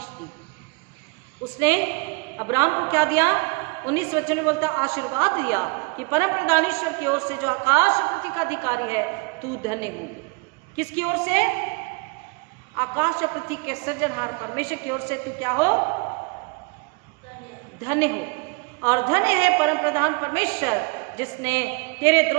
दी। उसने अब्राहम को क्या दिया, 19 वचन में बोलता आशीर्वाद दिया कि परम प्रधान ईश्वर की ओर से जो आकाश पृथ्वी का अधिकारी है, तू धन्य हो। किसकी ओर से, आकाश और पृथ्वी के सृजनहार परमेश्वर की ओर से तू क्या हो, धन्य हो। और धन्य है परम प्रधान परमेश्वर जिसने तेरे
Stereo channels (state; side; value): quieter; left; 30.1 dB